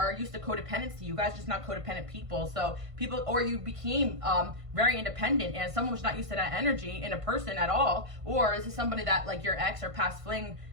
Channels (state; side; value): late; left; 1.5 ms